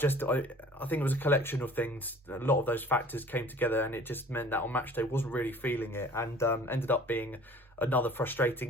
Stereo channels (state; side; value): normal; both; correlation 0.48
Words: it was a collection of things. A lot of those factors came together, and it just meant that on match day wasn't really feeling it, and ended up being another frustrating